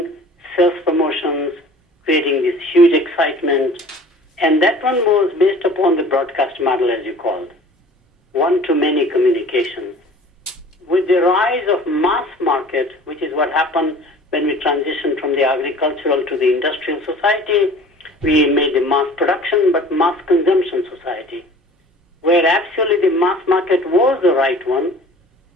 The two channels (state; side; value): normal; both; correlation 0.46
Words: sales promotions, creating this huge excitement. And that one was based upon the broadcast model, as you called, one-to-many communication. With the rise of mass market, which is what happened when we transitioned from the agricultural to the industrial society, we made the mass production but mass consumption society, where actually the mass market was the right one.